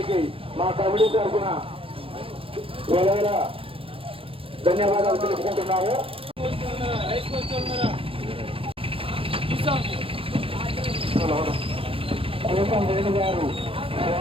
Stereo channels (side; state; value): left; late; 0.27 ms